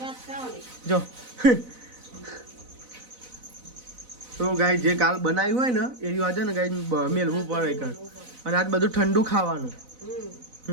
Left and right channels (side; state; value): left; late; 4.0 ms